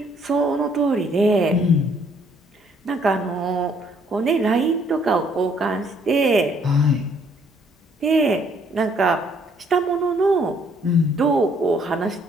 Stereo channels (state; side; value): normal; both; correlation 0.65